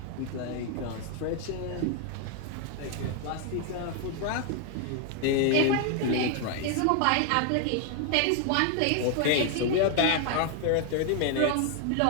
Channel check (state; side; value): different; both; correlation 0.00